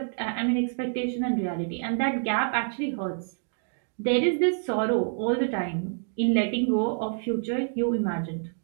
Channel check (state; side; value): silent; left; digital silence